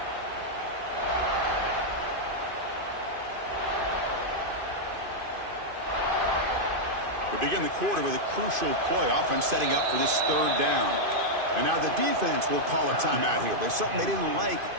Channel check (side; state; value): left; late; 2.5 ms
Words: We begin the quarter with a crucial play. Offense setting up for this third down. And now the defense will call a timeout here. There's something they didn't like